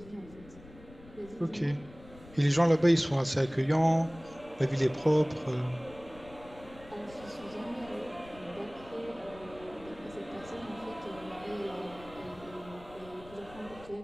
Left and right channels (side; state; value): left; noise; rumble, 20 dB below the sound